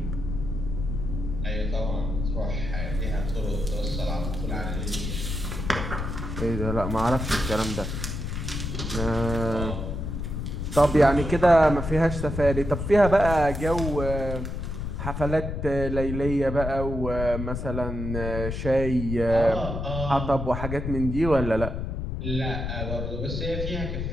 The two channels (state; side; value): noise; left; rumble, 4 dB below the sound